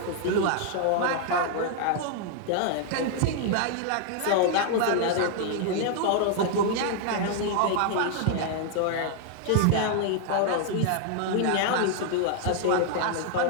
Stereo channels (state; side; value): different; both; correlation 0.00